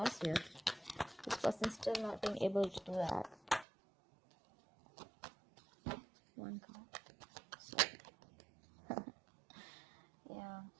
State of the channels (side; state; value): left; drops out; at 3.7 s